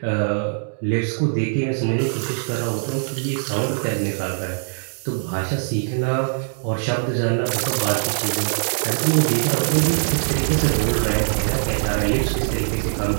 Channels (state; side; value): silent; left; digital silence